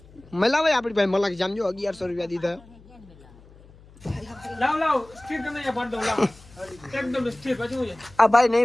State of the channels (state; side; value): noise; left; hum, 24 dB below the sound